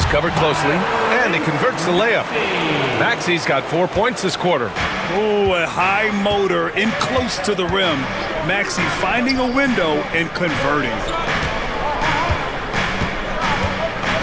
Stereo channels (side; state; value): both; identical; correlation 1.00